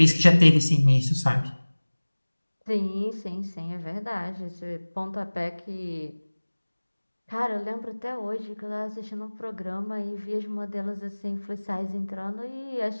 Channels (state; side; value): inverted; both; correlation -1.00